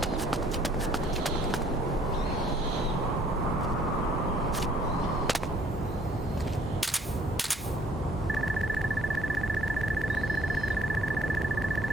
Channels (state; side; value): normal; both; correlation 0.60